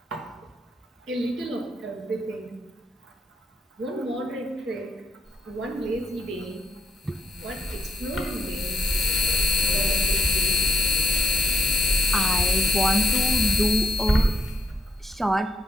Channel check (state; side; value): normal; both; correlation 0.74